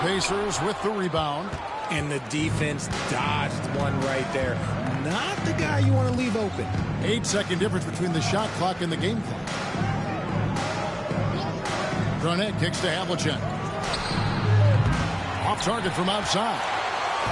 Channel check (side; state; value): both; identical; correlation 1.00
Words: Pacers with the rebound. And the defense dodged one right there. Not the guy you want to leave open. 8-second difference between the shot clock and the game clock. Garnett kicks to Havlicek. Off target from outside.